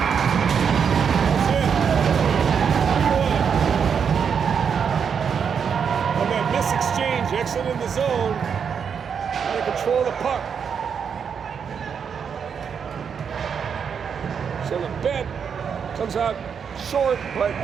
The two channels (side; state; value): left; quieter; 6.9 dB